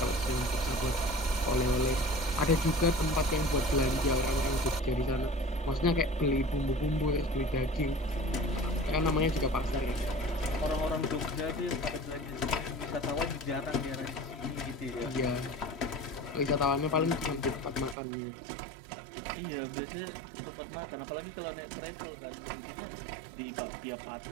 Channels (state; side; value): drops out; left; at 17.9 s